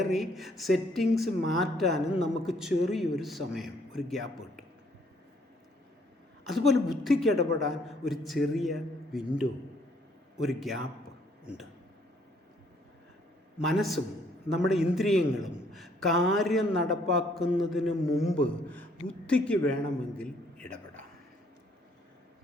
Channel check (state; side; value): normal; both; correlation 0.65